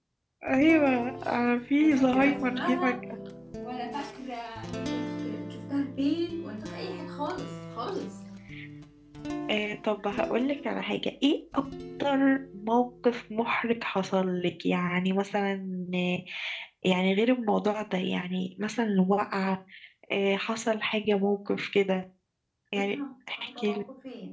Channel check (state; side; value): identical; both; correlation 1.00